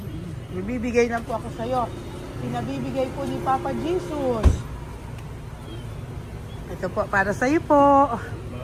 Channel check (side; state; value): both; identical; correlation 1.00